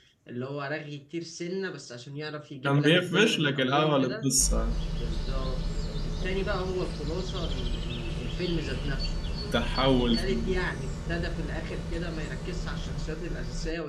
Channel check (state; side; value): identical; both; correlation 1.00